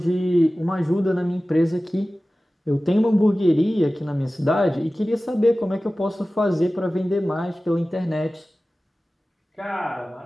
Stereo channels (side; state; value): both; normal; correlation 0.96